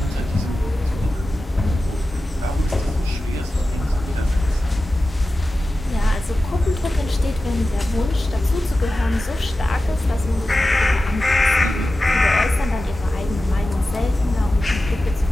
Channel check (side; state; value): both; normal; correlation 0.94